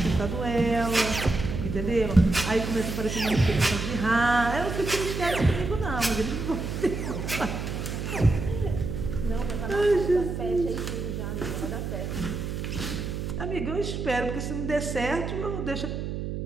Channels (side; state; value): right; noise; hum, 4 dB below the sound